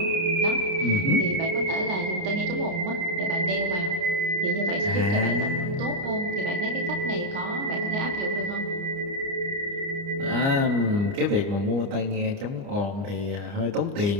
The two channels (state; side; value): late; left; 29 ms